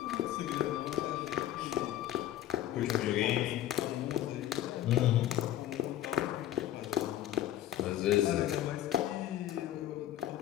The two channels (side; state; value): right; quieter; 12.8 dB